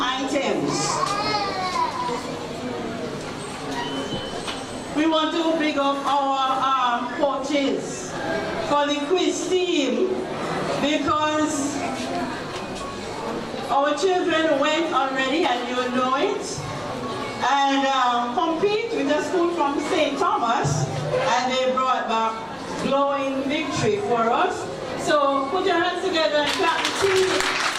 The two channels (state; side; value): identical; both; correlation 1.00